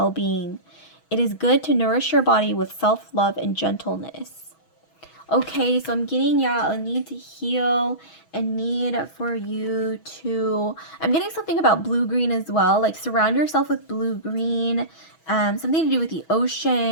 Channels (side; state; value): right; late; 6.2 ms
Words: It is good to nourish your body with self-love and gentleness. Okay, so I'm getting, a need to heal, a need for you to, I'm getting something about blue-green as well, like surround yourself with blue-green, something to do with the